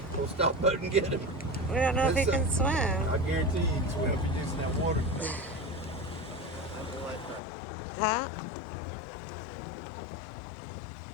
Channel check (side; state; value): right; drops out; at 7.4 s